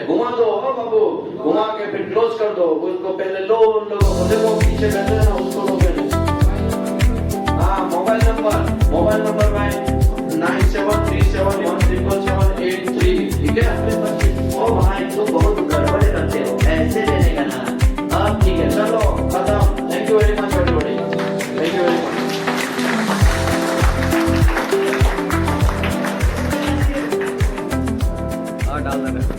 घुमा दो बाबू, घुमा के फिर क्लोज कर दो। उसको पहले लो, उन लोगों को देखो पीछे बैठे हैं ना, उसको लो पहले। हाँ, मोबाइल नंबर भाई 9737177783, ठीक है? ओ भाई तुम बहुत गड़बड़ करते हो, ऐसे देने का ना। अब ठीक है, चलो खत्म। Thank you very much everybody, thank you very much.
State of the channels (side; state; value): both; identical; correlation 1.00